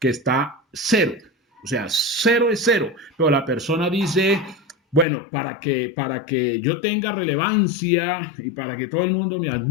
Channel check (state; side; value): drops out; right; at 5.1 s